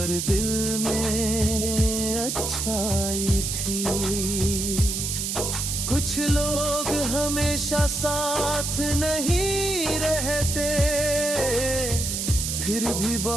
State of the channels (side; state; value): right; noise; hiss, 2 dB below the sound